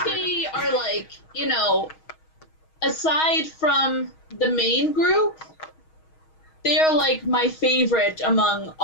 are like, aside from the main group, they're like my favorite among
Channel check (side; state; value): right; late; 6.3 ms